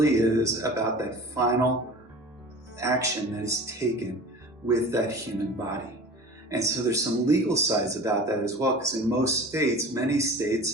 is about that final action that is taken with that human body. And so there's some legal sides about that as well, because in most states, many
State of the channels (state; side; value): normal; both; correlation 0.39